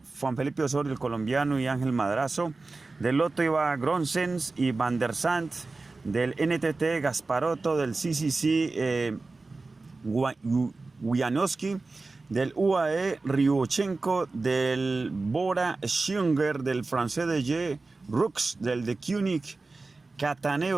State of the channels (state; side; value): quieter; left; 3.6 dB